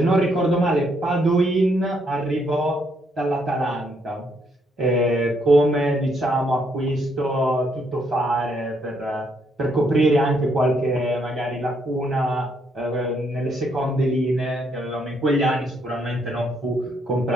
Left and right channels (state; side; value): normal; both; correlation 0.73